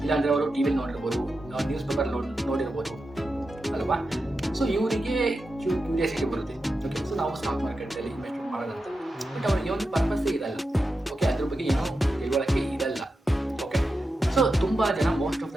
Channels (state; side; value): normal; both; correlation 0.90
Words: ಇಲ್ಲಾಂದರೆ ಅವರು ಟಿ ವಿಲಿ ನೋಡಿರ್ಬೋದು, ನ್ಯೂಸ್ ಪೇಪರ್ ನೋಡಿರ್ಬೋದು ಅಲ್ವಾ. ಸೊ ಇವರಿಗೆ ಕ್ಯೂರಿಯಾಸಿಟಿ ಬರುತ್ತೆ, ಓಕೆ ಸೊ ನಾವು ಸ್ಟಾಕ್ ಮಾರ್ಕೆಟಲ್ಲಿ ಇನ್ವೆಸ್ಟ್ಮೆಂಟ್ ಮಾಡೋದಂತ. ಬಟ್ ಅವರಿಗೆ ಒಂದು ಪರ್ಪಸ್ಸೇ ಇರಲ್ಲ, ಓಕೆ ಅದ್ರ ಬಗ್ಗೆ ಏನೋ ತಿಳುವಳಿಕೆ ಇರಲ್ಲ. ಓಕೆ ಸೊ ತುಂಬ ಜನ ಮೋಸ್ಟ್ ಆಫ್